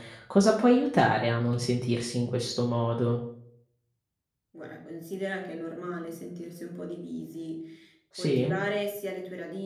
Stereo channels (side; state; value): both; identical; correlation 1.00